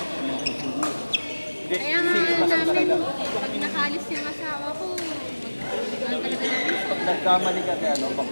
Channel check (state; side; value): inverted; both; correlation -1.00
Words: Kaya nga namin, pag nakalis yung asawa ko, mag-ano talaga namin. Pag nagkamali ka kaya ano,